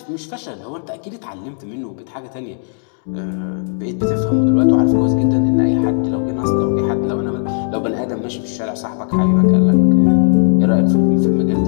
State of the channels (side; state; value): right; silent; digital silence